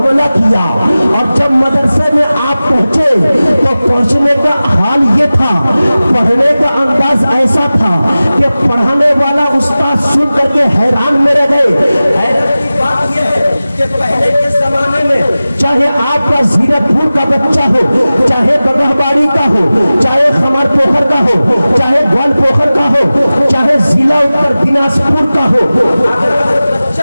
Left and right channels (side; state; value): both; inverted; correlation -0.96